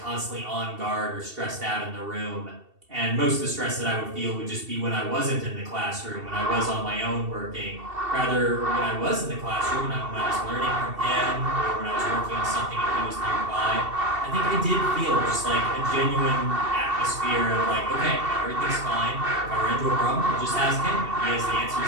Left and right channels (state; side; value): late; left; 2.7 ms